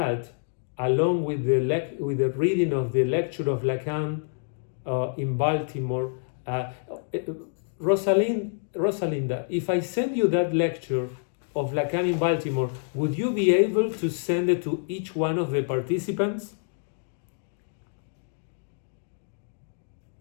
along with the reading of the lecture of Lacan in Baltimore, Rosalinda, if I send you that lecture of Lacan in Baltimore, would you be able to send it to each one of the participants?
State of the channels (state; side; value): silent; right; digital silence